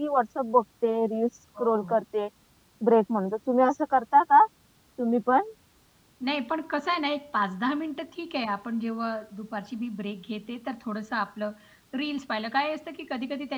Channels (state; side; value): identical; both; correlation 1.00